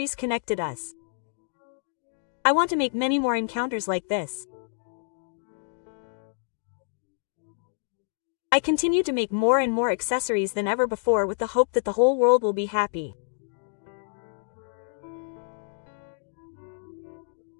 connected us. I want to make many more encounters like this. I continue to make more and more accessories than ever before with the hope that the whole world will be happy.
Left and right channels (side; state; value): right; silent; digital silence